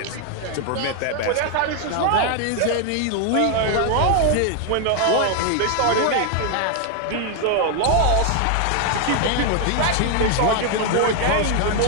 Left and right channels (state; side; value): different; both; correlation 0.00